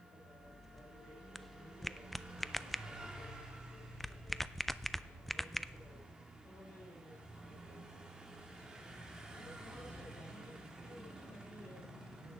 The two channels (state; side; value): noise; left; hiss, 29 dB below the sound